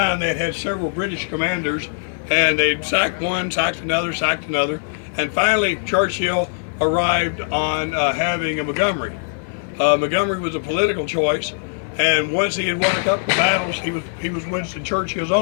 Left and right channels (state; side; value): silent; right; 65 dB below the other